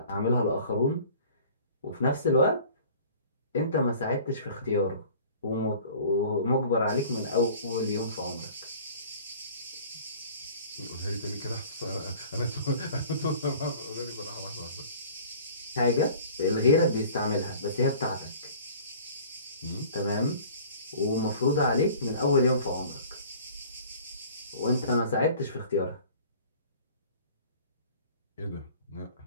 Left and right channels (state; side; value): inverted; both; correlation -0.47